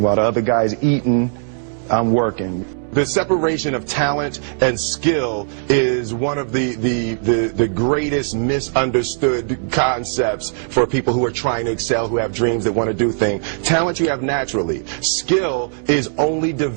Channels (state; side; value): silent; left; digital silence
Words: While the other guy's eating, I'm working. The separation of talent and skill is one of the greatest misunderstood concepts for people who are trying to excel, who have dreams, that want to do things. Talent you have naturally. Skill is only